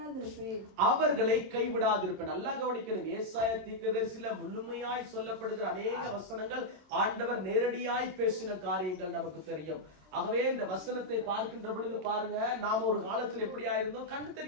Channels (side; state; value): left; late; 26 ms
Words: கைவிடாதிருப்பேன். நல்லா கவனிக்கணும். ஏசாயா தீர்க்கதரிசியில முழுமையாய் சொல்லப்படுகிற அநேக வசனங்கள் ஆண்டவர் நேரடியாய் பேசின காரியங்கள் நமக்கு தெரியும். ஆகவே இந்த வசனத்தை பார்க்கின்ற பொழுது பாருங்க, நாம ஒரு காலத்துல எப்படியா இருந்தோம்? கண்ணு